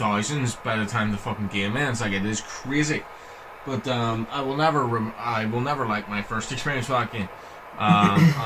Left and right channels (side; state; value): both; identical; correlation 1.00